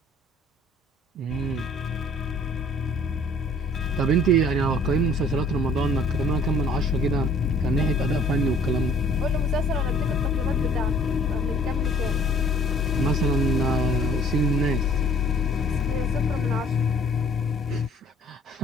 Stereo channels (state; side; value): normal; both; correlation 0.55